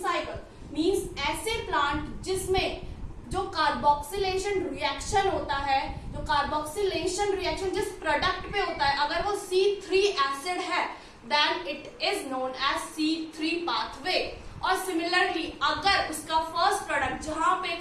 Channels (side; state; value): both; identical; correlation 1.00